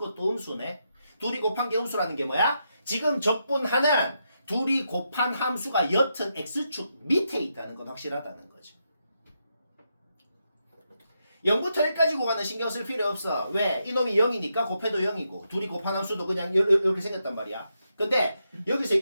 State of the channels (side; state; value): both; inverted; correlation -0.83